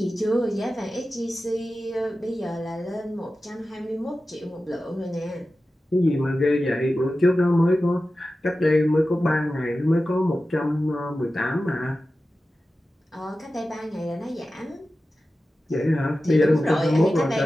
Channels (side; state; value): both; normal; correlation 0.94